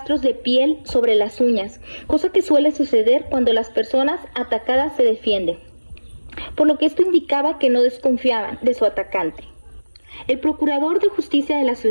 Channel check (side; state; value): both; inverted; correlation -1.00